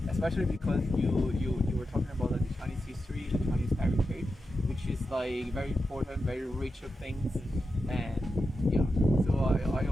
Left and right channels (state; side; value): normal; both; correlation 0.89